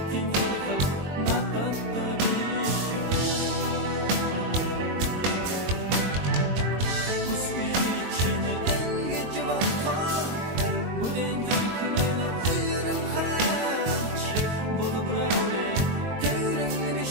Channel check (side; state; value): left; late; 22 ms